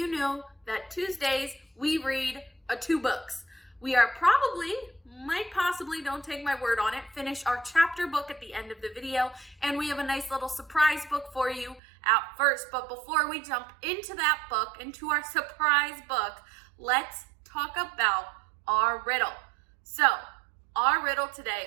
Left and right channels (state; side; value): drops out; left; at 11.8 s